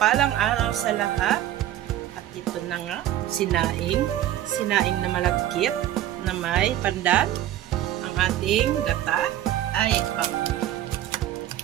araw sa lahat. At ito na nga, sinaing. Sinaing na malagkit na may pandan. Ang ating gata ay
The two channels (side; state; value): left; quieter; 12.8 dB